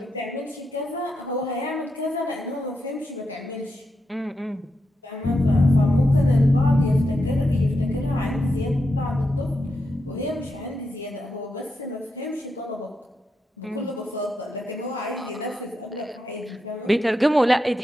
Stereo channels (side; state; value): both; normal; correlation 0.85